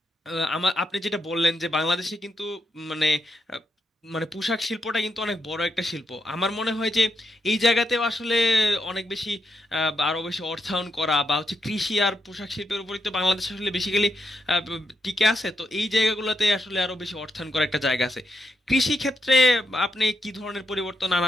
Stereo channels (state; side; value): normal; both; correlation 0.82